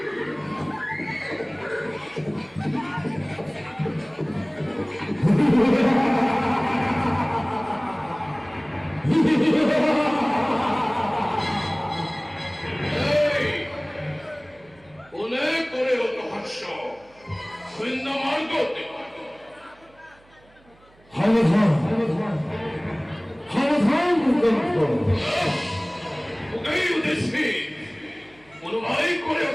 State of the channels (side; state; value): right; noise; hum, 29 dB below the sound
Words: এই কোনে করে অত হাস্য সৈন্য মার্গ হাওধান হাওধান ভূকম্প ওকেই উদ্দেশ্যে অনুভয় করে